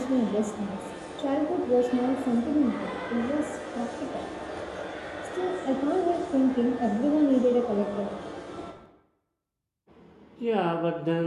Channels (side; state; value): both; identical; correlation 1.00